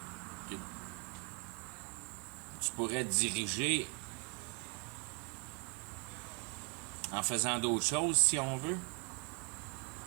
que tu pourrais diriger en faisant d'autres choses si on veut.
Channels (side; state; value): left; quieter; 29.2 dB